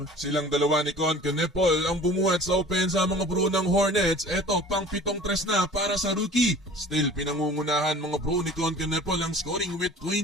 Silang dalawa ni Con Canepol ang bumuhat sa opensa mga bro ng Hornets. Eto pang pitong tres na para sa rookie. Still pinangungunahan mga bro ni Con Canepol ang scoring with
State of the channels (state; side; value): normal; both; correlation 0.45